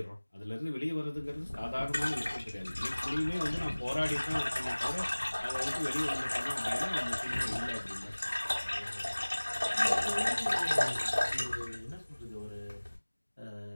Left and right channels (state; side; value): inverted; both; correlation -1.00